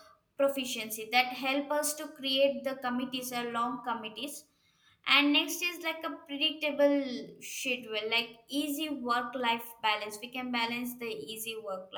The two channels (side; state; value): both; identical; correlation 1.00